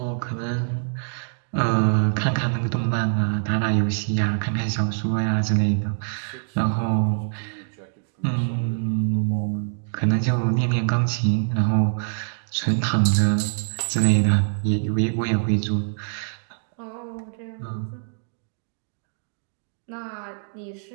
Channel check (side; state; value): left; silent; digital silence